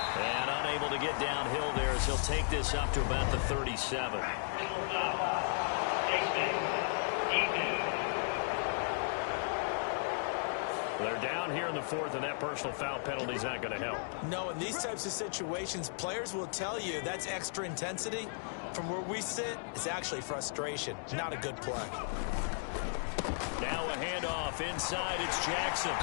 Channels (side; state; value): right; silent; digital silence